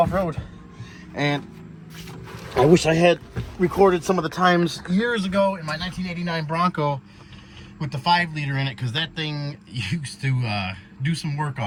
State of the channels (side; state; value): both; identical; correlation 1.00